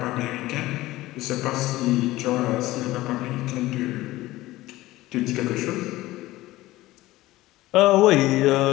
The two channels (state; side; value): quieter; right; 17.5 dB